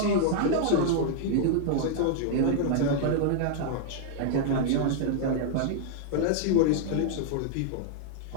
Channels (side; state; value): both; different; correlation -0.01